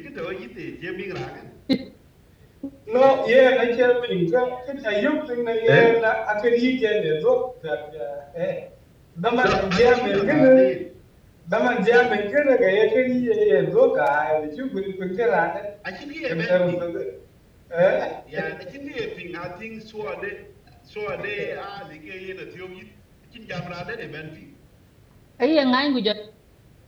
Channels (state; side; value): identical; both; correlation 1.00